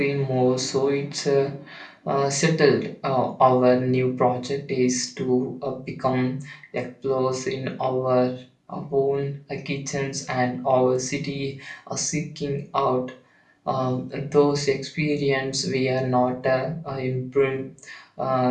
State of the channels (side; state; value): both; identical; correlation 1.00